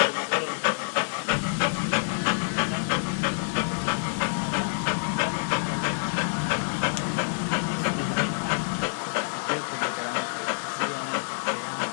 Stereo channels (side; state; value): right; silent; digital silence